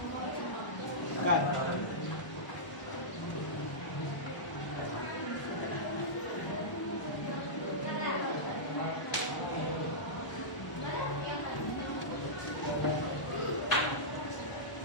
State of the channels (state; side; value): late; right; 1.0 ms